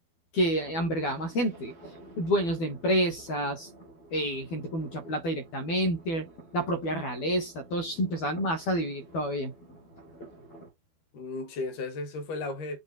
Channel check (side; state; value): right; late; 12 ms